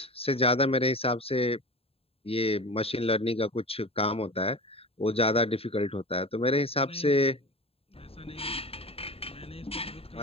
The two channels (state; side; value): late; right; 0.28 ms